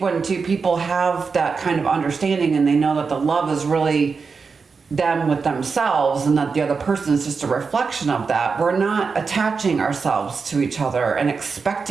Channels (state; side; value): quieter; left; 5.0 dB